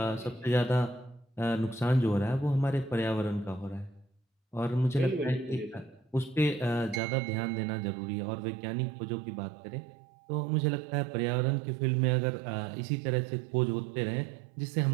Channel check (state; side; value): drops out; left; at 7.0 s